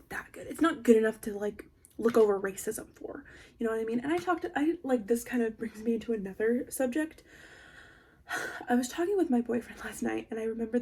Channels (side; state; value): both; identical; correlation 1.00